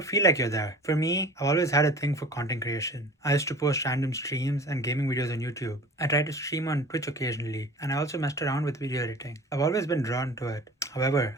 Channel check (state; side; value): normal; both; correlation 0.41